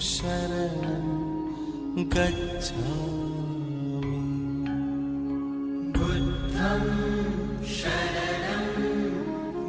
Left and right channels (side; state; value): both; identical; correlation 1.00